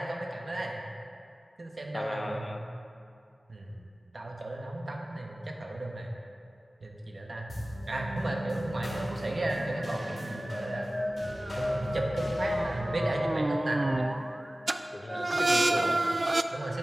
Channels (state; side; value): normal; both; correlation 0.97